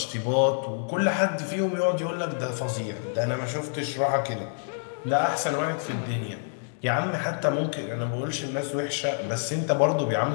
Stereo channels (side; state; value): right; silent; digital silence